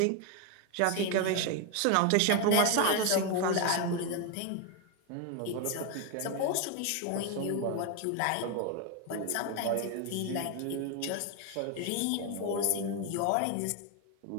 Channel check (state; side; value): different; both; correlation 0.01